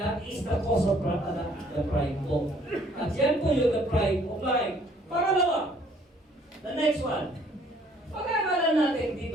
is the cause of the pride po. At yan po yung the pride of life. Pangalawa, the next one. Pag-aaralan natin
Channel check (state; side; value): normal; both; correlation 0.61